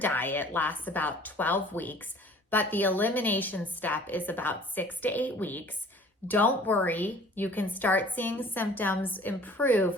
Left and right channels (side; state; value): both; normal; correlation 0.50